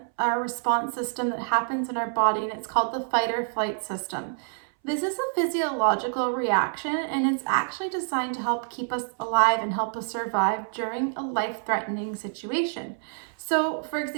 a response system that happens in our body, and it's called the fight or flight system. This is a physiological reaction, and it's actually designed to help keep us alive and help us survive during a life-threatening situation. So, for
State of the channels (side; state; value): left; silent; 60 dB below the other